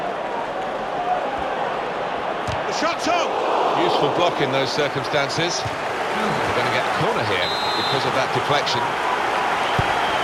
The shot's on! Useful block in those circumstances. We're going to get a corner here because of that deflection.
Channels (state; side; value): identical; both; correlation 1.00